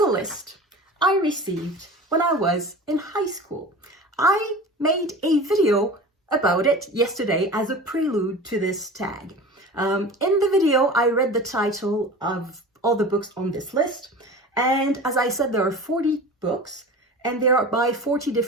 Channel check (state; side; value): normal; both; correlation 0.36